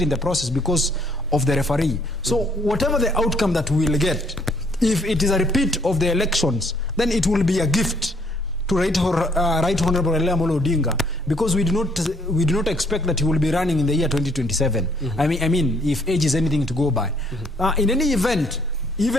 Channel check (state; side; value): normal; both; correlation 0.65